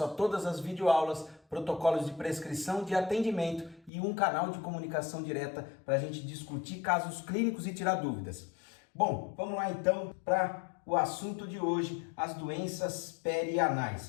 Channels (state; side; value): drops out; right; at 3.9 s